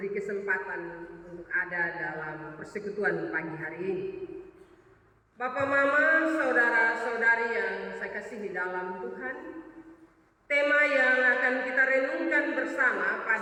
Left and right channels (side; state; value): both; identical; correlation 1.00